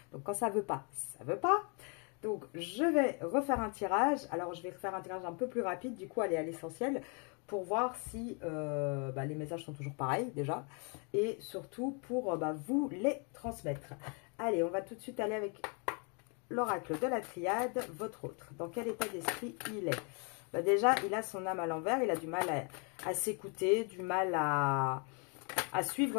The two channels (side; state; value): right; quieter; 36.2 dB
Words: Donc quand ça veut pas, ça veut pas. Donc je vais refaire un tirage. Alors je vais faire un tirage un peu plus rapide, du coup aller à l'essentiel pour voir si les messages sont toujours pareils déjà. Et surtout pour vous les transmettre. Allez, on va tout de suite aller avec l'oracle de la triade, votre autre. Dans quel état d'esprit il est? Déjà, il a son âme à l'envers, il a du mal à s'écouter, du mal à